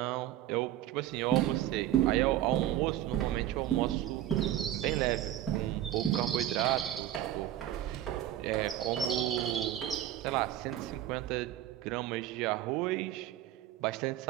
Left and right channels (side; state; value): left; quieter; 12.6 dB